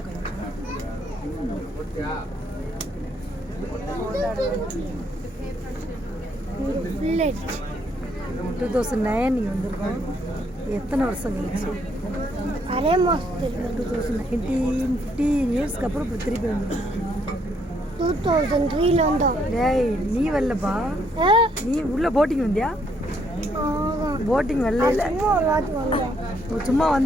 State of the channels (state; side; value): normal; both; correlation 0.71